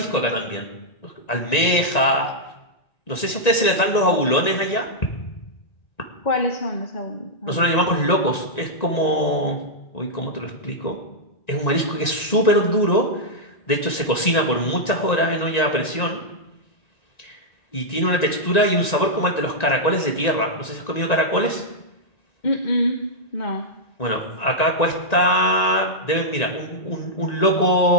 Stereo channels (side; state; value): right; late; 1.9 ms